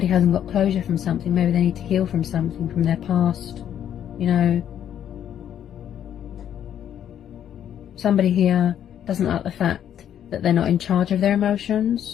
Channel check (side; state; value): right; quieter; 10.0 dB